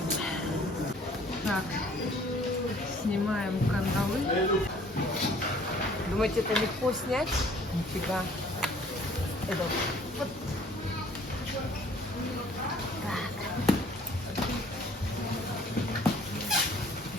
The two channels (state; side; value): normal; both; correlation 0.55